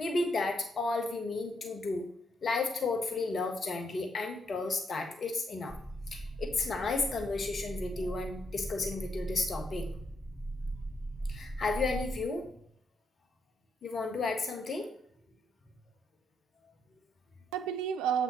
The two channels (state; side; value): normal; both; correlation 0.77